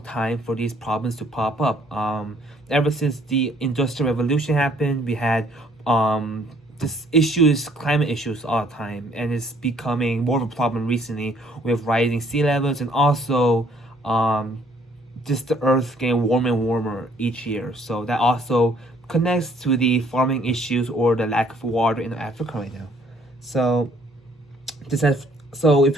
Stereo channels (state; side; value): normal; both; correlation 0.62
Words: time for these problems to pop up. Ever since the Industrial Revolution happened, we had climate issues all the time, and it's becoming more of a problem recently with rising sea levels, and also just the earth getting warmer and warmer each year. So that also connects to the farming issues or the lack of water in Africa right now. So if